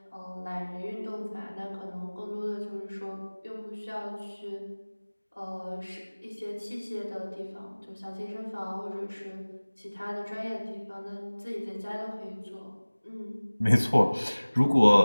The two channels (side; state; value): both; inverted; correlation -1.00